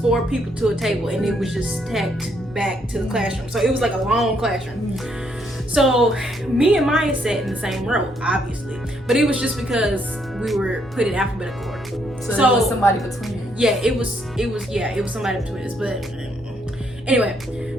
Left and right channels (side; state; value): both; normal; correlation 0.72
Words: people to a table, and it was just stacked back to the classroom. So it was like a long classroom. So me and Maya sat in the same row, obviously, but it was just because we were put in alphabetical order. So there was somebody between you. Yeah, it was somebody between us. But anyway,